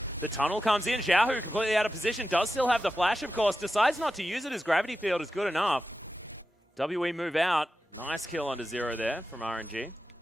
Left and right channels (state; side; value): normal; both; correlation 0.92